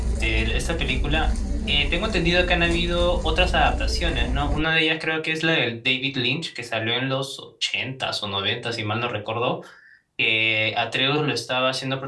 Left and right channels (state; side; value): identical; both; correlation 1.00